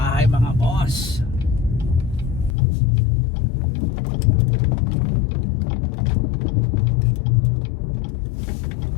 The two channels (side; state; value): right; drops out; at 2.6 s